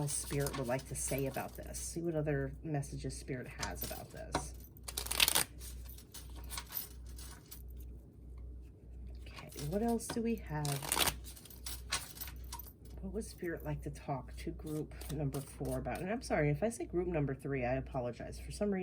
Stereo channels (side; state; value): both; identical; correlation 1.00